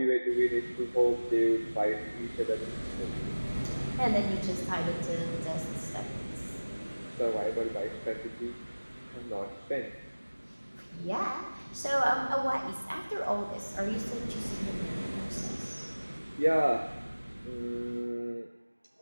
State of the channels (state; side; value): inverted; both; correlation -1.00